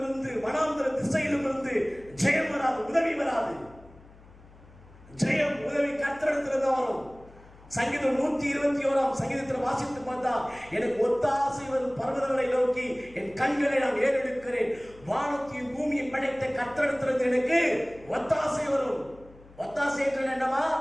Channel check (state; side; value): noise; left; hum, 23 dB below the sound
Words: இருந்து, வனாந்தர திசையிலும் இருந்து ஜெயம் வராது, உதவி வராது. ஜெயம், உதவி கர்த்தரிடத்திலிருந்து வரும். சங்கீதம் 121 சங்கீதத்தில் வாசித்து பார்த்தா, எனக்கு ஒத்தாசை வரும் பர்வதங்களை நோக்கி என் கண்களை நான் ஏறெடுக்கிறேன். வானத்தையும் பூமியை படைத்த கர்த்தரிடத்திலிருந்து எனக்கு ஒத்தாசை வரும். ஒத்தாசை என்று என்னவா?